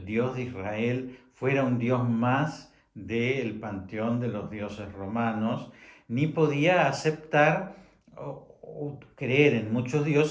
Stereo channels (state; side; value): identical; both; correlation 1.00